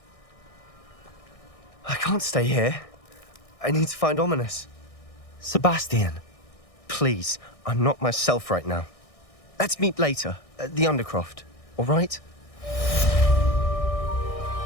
I can't stay here. I need to find Ominous. Sebastian. Please, I'm not myself right now. Let's meet later, at the Undercroft, all right?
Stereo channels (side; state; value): right; late; 1.6 ms